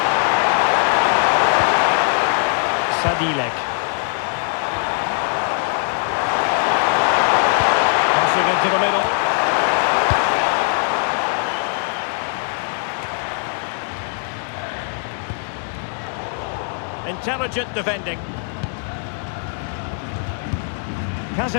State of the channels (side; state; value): right; silent; 57 dB below the other